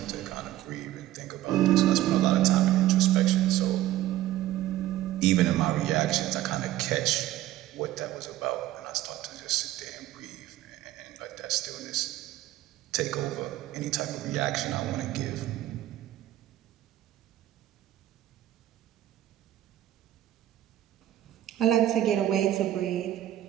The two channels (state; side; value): quieter; left; 14.0 dB